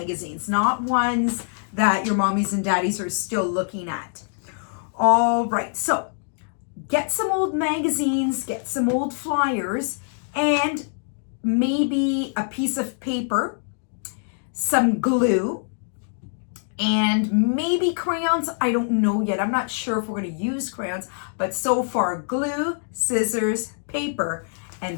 not ones that your mommies and daddies are still looking at. All right, so get some old magazines, get some old flyers, and maybe a piece of paper, some glue, and maybe crayons. I don't know yet. I'm not sure if we're going to use crayons, but so far glue, scissors, paper,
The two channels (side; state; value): right; silent; digital silence